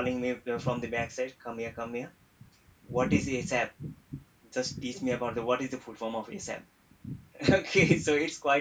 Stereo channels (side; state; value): both; identical; correlation 1.00